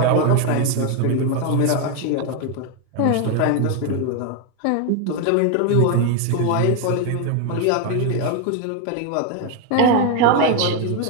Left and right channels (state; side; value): different; both; correlation 0.01